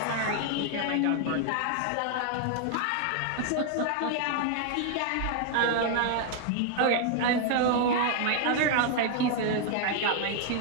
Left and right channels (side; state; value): both; different; correlation 0.00